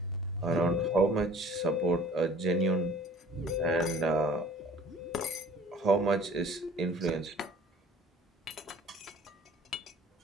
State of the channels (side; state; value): both; normal; correlation 0.49